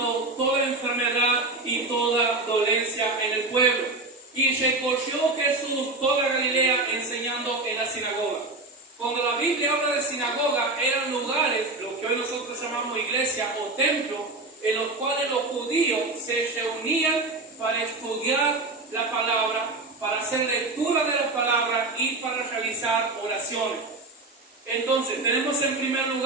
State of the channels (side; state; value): left; quieter; 3.1 dB